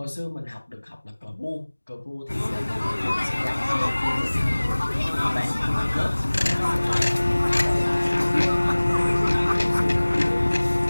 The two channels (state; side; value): inverted; both; correlation -1.00